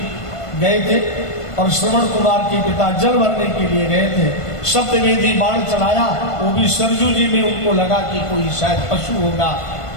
गए थे और श्रवण कुमार के पिता जल भरने के लिए गए थे। शब्दवेदी बाण चलाया, वो भी सरजू जी में उनको लगा कि कोई शायद पशु होगा,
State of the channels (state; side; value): late; right; 1.5 ms